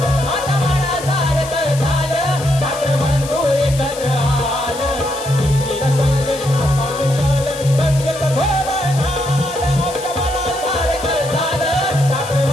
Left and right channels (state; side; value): noise; left; hiss, 12 dB below the sound